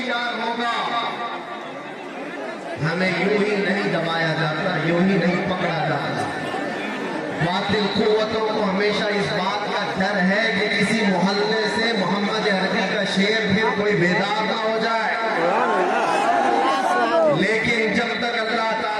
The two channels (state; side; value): identical; both; correlation 1.00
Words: होगा। हमें यूं ही नहीं दबाया जाता, यूं ही नहीं पकड़ा जाता। बातिल कुव्वतों को हमेशा इस बात का डर है कि किसी मोहल्ले से मोहम्मद अरबी का शेर फिर कोई बेदार ना हो जाए। लेकिन जब तक अल्लाह